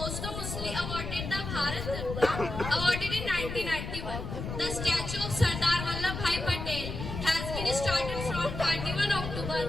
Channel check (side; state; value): left; noise; rumble, 6 dB below the sound